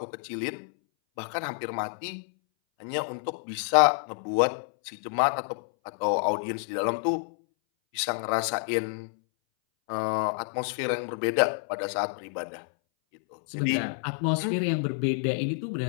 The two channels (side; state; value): right; silent; 59 dB below the other